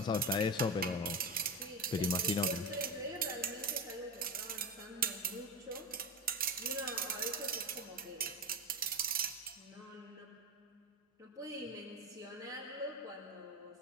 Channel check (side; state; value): both; normal; correlation 0.21